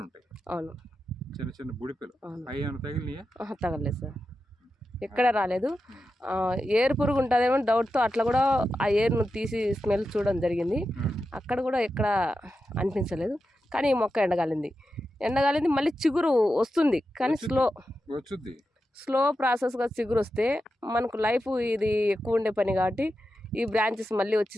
ఉంటాయి. అవును, చిన్న చిన్న బుడిపులు. అవి ఏమైనా తగిలినాయా? తగలేదు సార్, ఎక్కడ రాలేదు. ఏరు పురుగు ఉంటుందేమో డౌట్తో అట్లా కూడా ఆ ఏరును తీసి స్మెల్ చూడడం జరిగింది. అక్కడ కూడా ఎక్కడ అనిపించలేదు. కానీ ఈ మొక్క ఎండగాలింది మళ్ళీ చిగురు వస్తుంది, కానీ స్లో ప్రాసెస్గా చిగురు వస్తే మనకు లైఫ్ ఇది ఎక్కువ ఉండే పని కాబట్టి ఈ బ్రాంచెస్ మళ్ళీ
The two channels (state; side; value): normal; both; correlation 0.90